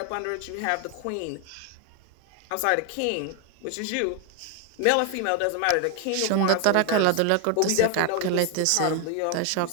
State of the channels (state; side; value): different; both; correlation 0.01